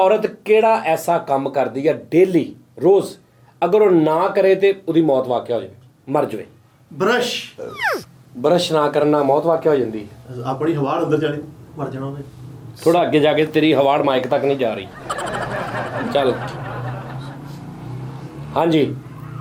ਕਿਹੜਾ ਐਸਾ ਕੰਮ ਕਰਦੀ ਹੈ ਡੇਲੀ ਰੋਜ਼ ਅਗਰ ਉਹ ਨਾ ਕਰੇ ਤੇ ਉਹਦੀ ਮੌਤ ਵਾਕਿਆ ਹੋ ਜਾਵੇ, ਮਰ ਜਾਵੇ। ਬ੍ਰਸ਼ ਬਰਸ਼ ਨਾ ਕਰਨਾ ਮੌਤ ਵਾਕਿਆ ਹੋ ਜਾਂਦੀ ਹੈ। ਆਪਣੀ ਹਵਾ ਅੰਦਰ ਜਾਣੀ, ਮਰ ਜਾਣਾ ਉਹਨੇ। ਥੋੜਾ ਅੱਗੇ ਜਾ ਕੇ ਤੇਰੀ ਹਵਾੜ ਮਾਈਕ ਤੱਕ ਨਹੀਂ ਜਾ ਰਹੀ। ਚੱਲ ਹਾਂਜੀ,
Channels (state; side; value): identical; both; correlation 1.00